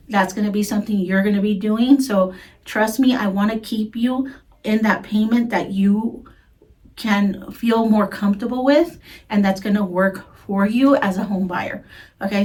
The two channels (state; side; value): identical; both; correlation 1.00